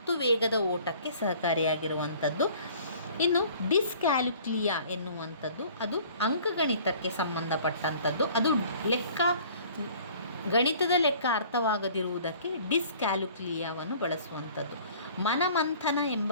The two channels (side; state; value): both; inverted; correlation -0.51